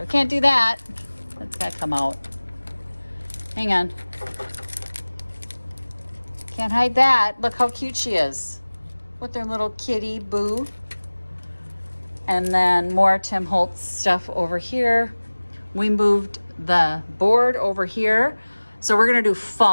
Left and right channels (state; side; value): inverted; both; correlation -1.00